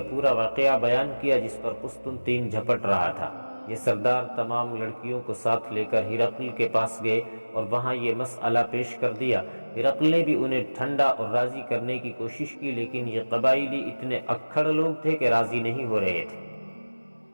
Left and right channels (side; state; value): both; inverted; correlation -1.00